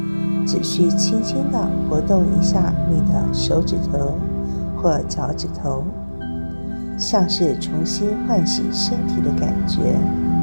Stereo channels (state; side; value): inverted; both; correlation -1.00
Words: 只需轻轻地活动一下你的手指头或脚趾头，像是重新唤醒身体的感觉。